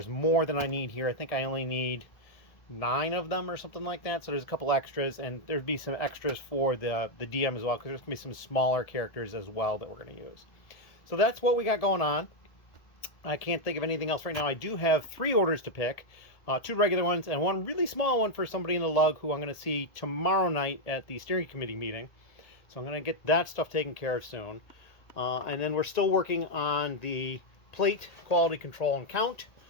more than I need here. I think I only need 9 of them or something like that. So there's a couple extras, and there'd be some extras for the DM as well, because there's going to be some smaller characters as well that we're going to use. So that's what we got going on. I can't think of anything else right now. I do have 3 orders to pick. 2 regular ones and 1 really small one for somebody in the lug who I'm going to see tomorrow night at the steering committee meeting. So I'm going to get that stuff taken care of soon. And then we're still working on the plate quality control and count.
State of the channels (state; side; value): late; right; 1.7 ms